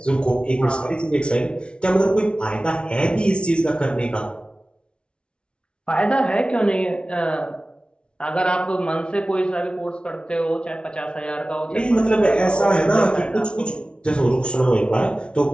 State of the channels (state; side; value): late; right; 0.058 ms